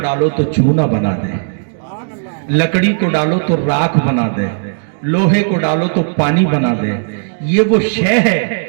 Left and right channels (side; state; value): left; silent; digital silence